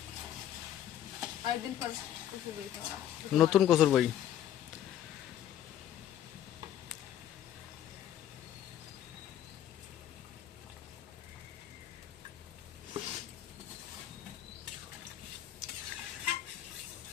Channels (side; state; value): right; quieter; 11.1 dB